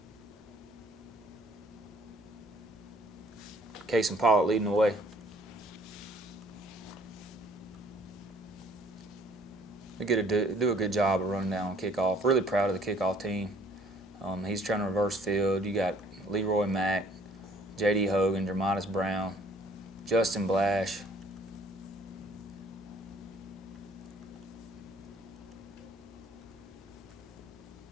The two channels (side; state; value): both; normal; correlation 0.58